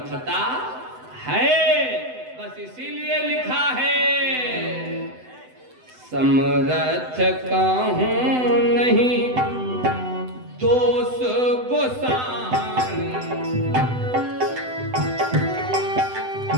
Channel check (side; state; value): left; late; 7.9 ms